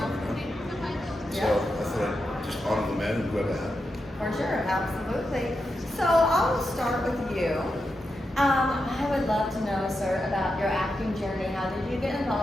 you know? So I thought I'd just honor the man and grab a hat. For sure, absolutely. So I'll start with you. I would love to know, sir, about your acting journey. How did you get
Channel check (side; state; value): both; normal; correlation 0.87